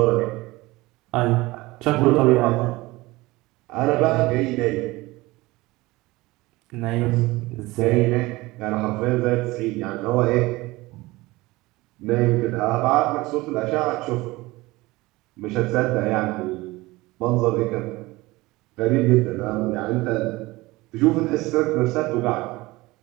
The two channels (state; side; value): quieter; left; 20.7 dB